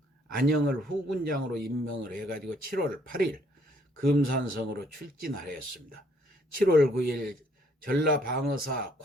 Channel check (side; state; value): both; normal; correlation 0.65